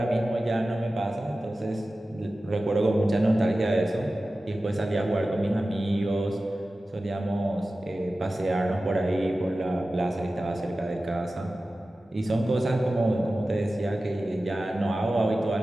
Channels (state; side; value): normal; both; correlation 0.95